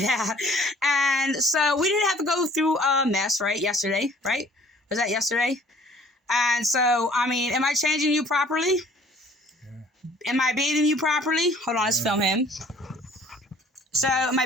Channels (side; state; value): both; normal; correlation 0.54